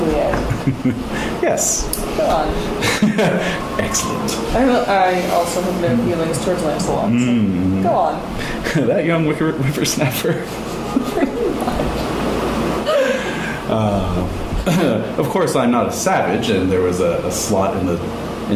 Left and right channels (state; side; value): identical; both; correlation 1.00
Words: Yes. Go on. Excellent. I also have no feelings towards Lancelot, so go on. That young whippersnapper. Of course, I'm not a savage, and there was a slot